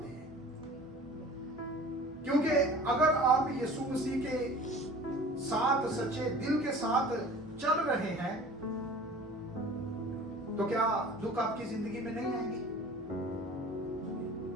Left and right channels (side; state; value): both; normal; correlation 0.44